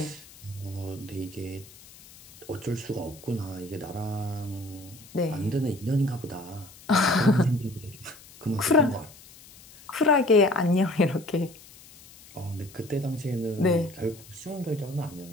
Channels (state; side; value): noise; left; hiss, 21 dB below the sound